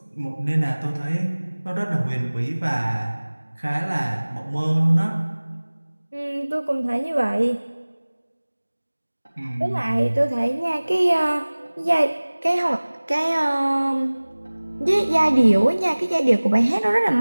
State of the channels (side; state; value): both; inverted; correlation -1.00